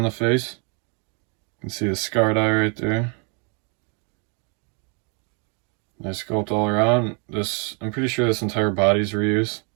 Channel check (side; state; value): left; quieter; 36.9 dB